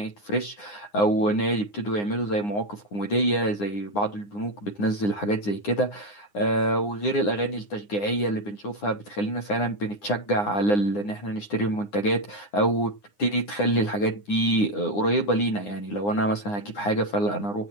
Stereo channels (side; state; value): right; late; 9.8 ms